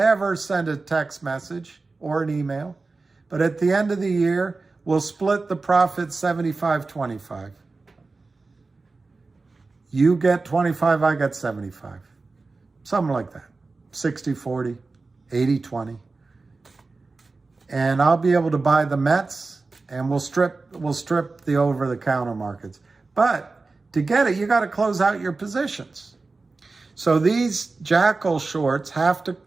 send a text message or an email. But at the end of the year, we'll split the profit 75-25. You get 25, I get 75. Something like that. 60-40, 80-20. And I'll be able to buy the Mets, and we'll strip the over-the-counter markets. But to get it, you got to close out your positions. So these jackal shorts have to,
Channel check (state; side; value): quieter; left; 3.8 dB